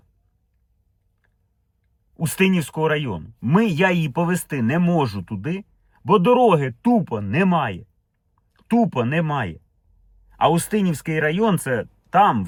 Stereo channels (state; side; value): identical; both; correlation 1.00